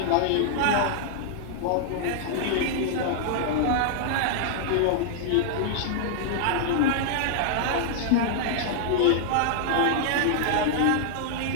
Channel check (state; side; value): different; both; correlation -0.01